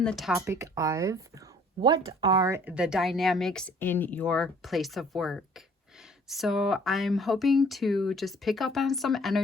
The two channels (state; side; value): normal; both; correlation 0.56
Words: the topic of what are the dynamics in your place of work. So I'm hoping to just pick up on some